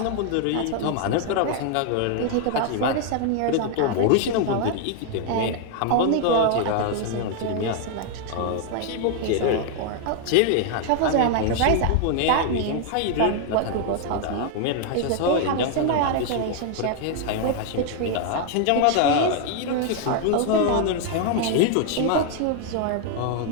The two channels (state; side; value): different; both; correlation 0.00